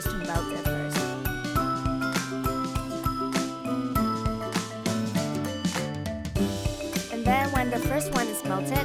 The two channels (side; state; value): both; identical; correlation 1.00